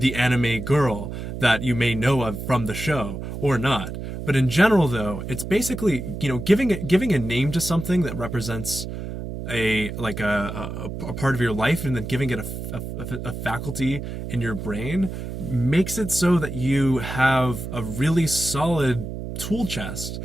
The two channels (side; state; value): right; noise; hum, 7 dB below the sound